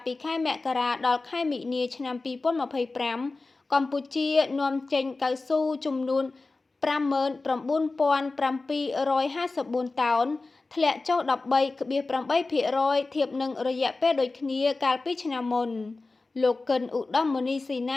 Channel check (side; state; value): right; quieter; 3.5 dB